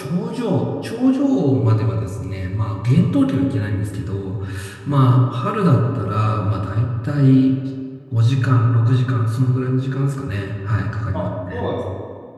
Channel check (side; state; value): both; identical; correlation 1.00